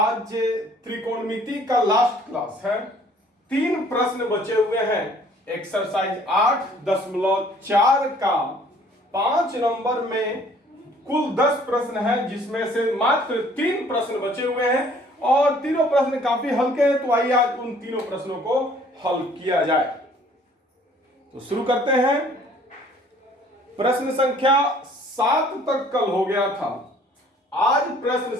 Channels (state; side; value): normal; both; correlation 0.57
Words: त्रिकोणमिति का लास्ट क्लास है। 3 प्रश्न बचे हुए हैं। एक्सरसाइज 8.4 का 5 नंबर में कुल 10 प्रश्न है, जिसमें से मात्र 3 प्रश्न बचे हुए हैं और तीनों प्रश्न काफी हल्के हैं। तो आइए आज उन तीनों प्रश्नों को हल किया जाए। तो शुरू करते हैं। प्रश्न संख्या 7 तक कल हो गया था। आज प्रश्न